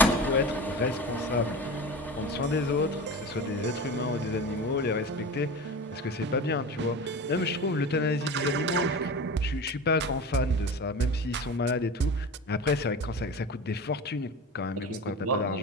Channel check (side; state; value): both; normal; correlation 0.31